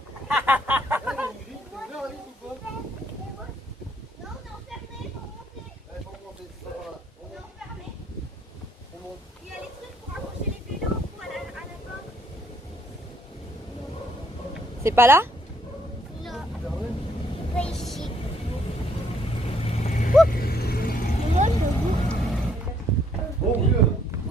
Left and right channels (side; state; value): both; normal; correlation 0.68